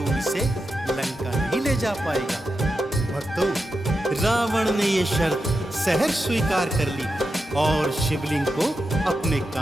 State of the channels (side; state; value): both; normal; correlation 0.89